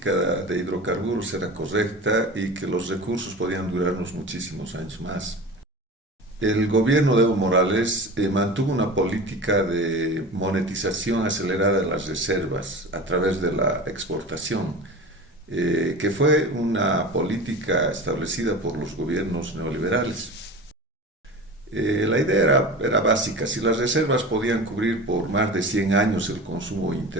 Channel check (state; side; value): normal; both; correlation 0.33